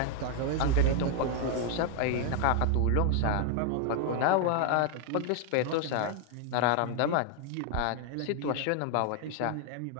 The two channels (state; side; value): different; both; correlation 0.00